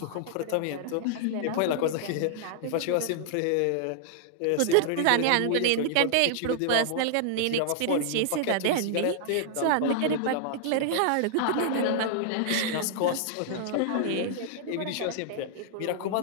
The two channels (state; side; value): different; both; correlation -0.01